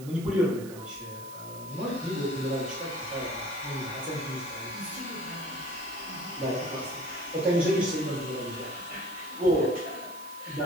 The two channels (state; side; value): noise; right; hiss, 16 dB below the sound